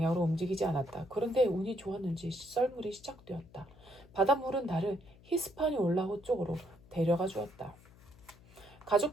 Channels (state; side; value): noise; left; hum, 24 dB below the sound